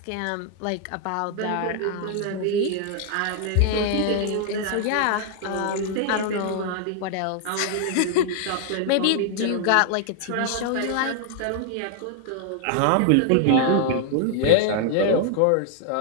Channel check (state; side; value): different; both; correlation 0.00